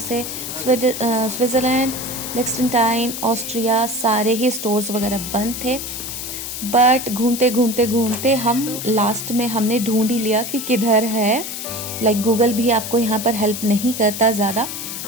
स्विट्ज़रलैंड, लिechtenstein, ऑस्ट्रिया सारे ही स्टोर्स वगैरह बंद थे। बट घूमते घूमते घूमते हम लास्ट में हमने ढूंढ ही लिया कि किधर है। लाइक गूगल भी आपको यहाँ पर हेल्प नहीं करता ज़्यादा,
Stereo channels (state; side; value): noise; left; hiss, 7 dB below the sound